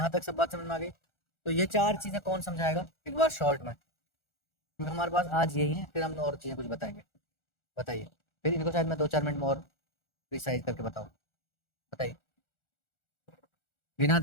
तक सब बात समझ में आ गई। तो ये 4 चीजें कौन समझाएगा एक बार शॉर्ट में, क्योंकि हमारे पास आज यही है, फिर हम और चीजें कुछ बताएंगे। बताइए, फिर इनको शायद मैं 2-4 मिनट में और प्रिसाइज करके बताऊँ। बताइए, बिना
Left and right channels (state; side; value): late; right; 1.4 ms